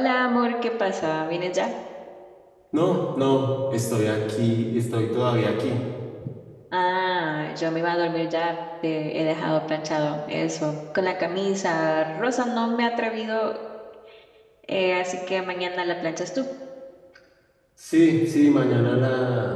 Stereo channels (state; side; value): identical; both; correlation 1.00